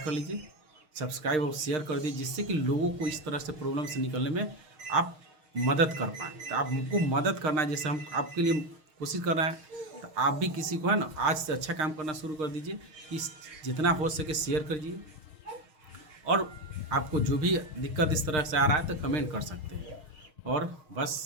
लीजिए, सब्सक्राइब और शेयर कर दीजिए, जिससे कि लोगों को इस तरह से प्रॉब्लम से निकलने में आप मदद कर पाएँ। तो आप हमको मदद करना है, जैसे हम आपके लिए कोशिश कर रहे हैं, तो आप भी किसी को है ना आज से अच्छा काम करना शुरू कर दीजिए, कि जितना हो सके शेयर करिए। और आपको जो भी दिक्कत इस तरह से आ रहा है तो कमेंट कर सकते हैं। और बस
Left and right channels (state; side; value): late; left; 6.5 ms